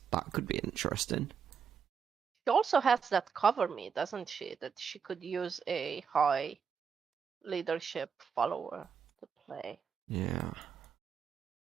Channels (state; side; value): quieter; left; 6.6 dB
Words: That could be interesting. She also has that cover me, doesn't she? That she could use a high leadership follower to play. Yeah.